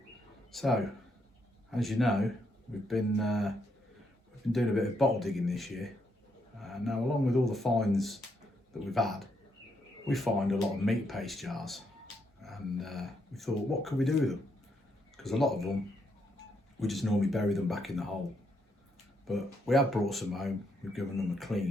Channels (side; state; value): both; normal; correlation 0.77